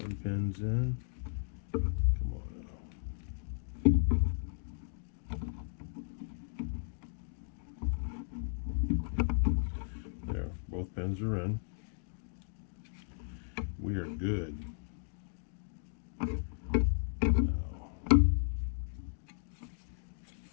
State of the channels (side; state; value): right; silent; digital silence